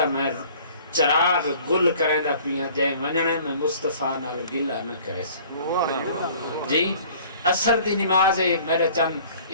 میں چراغ گل کریں دا پیا جائے ونجنے میں مصطفیٰ نال گلہ نہ کرے سکتا. جی اثر دی نماز ہے میرے چند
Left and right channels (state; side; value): inverted; both; correlation -0.51